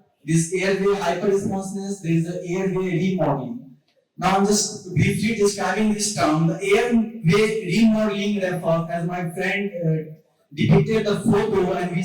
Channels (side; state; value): both; identical; correlation 1.00